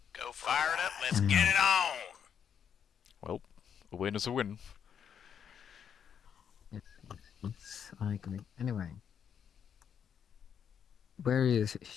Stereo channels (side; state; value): right; quieter; 8.0 dB